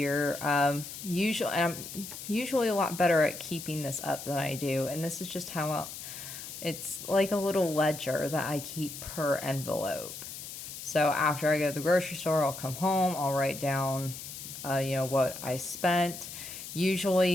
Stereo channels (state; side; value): noise; left; hiss, 10 dB below the sound